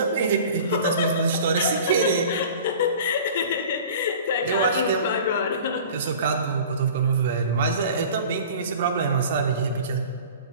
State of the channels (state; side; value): inverted; both; correlation -0.42